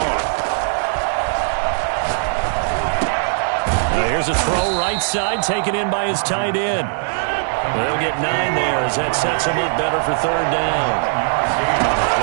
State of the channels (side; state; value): left; silent; 66 dB below the other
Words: Now here's a throw right side, taken in by his tight end. They'll get 9 there as that sets him up better for 3rd down.